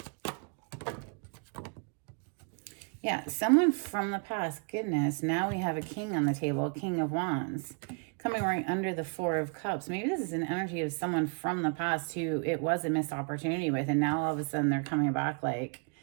Yeah, someone from the past. Goodness, now we have a king on the table, a King of Wands. Coming right under the 4 of Cups. Maybe this is an energy of someone from the past who it was a missed opportunity with, and now all of a sudden they're coming back like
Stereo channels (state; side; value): quieter; left; 39.0 dB